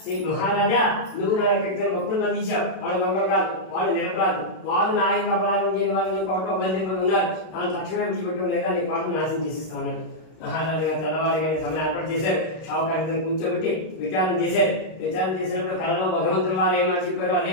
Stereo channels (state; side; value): late; right; 32 ms